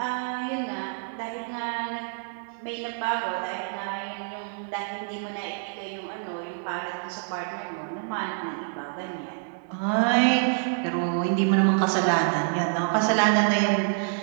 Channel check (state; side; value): silent; left; digital silence